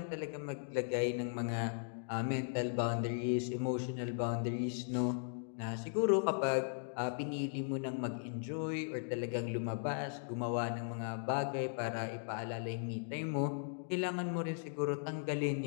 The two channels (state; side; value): silent; right; digital silence